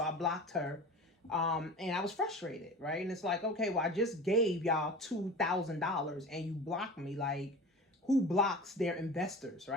I blocked her. And I was frustrated, right? And it's like, okay, well, I just gave y'all $2,000 and you blocked me. Like, who blocks their investors,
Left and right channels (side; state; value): both; normal; correlation 0.35